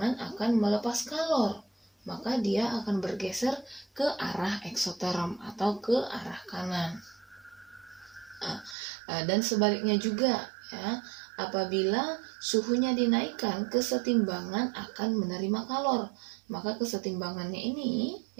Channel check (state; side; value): drops out; left; at 8.8 s